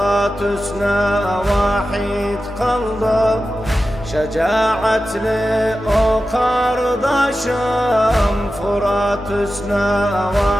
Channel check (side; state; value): both; normal; correlation 0.93